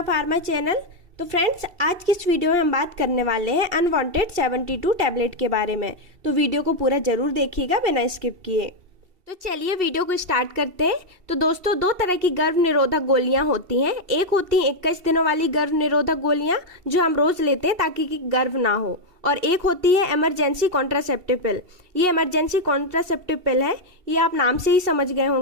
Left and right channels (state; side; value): late; left; 2.7 ms